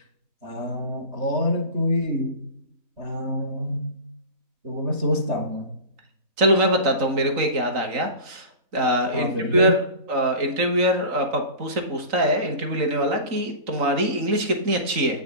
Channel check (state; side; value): late; left; 3.9 ms